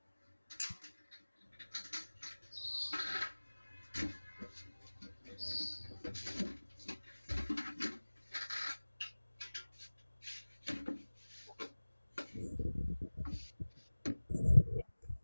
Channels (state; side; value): inverted; both; correlation -1.00